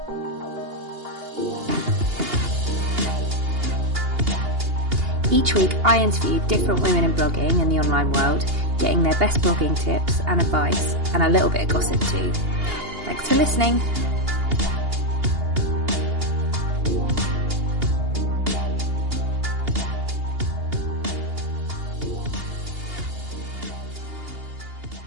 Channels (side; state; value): left; late; 2.8 ms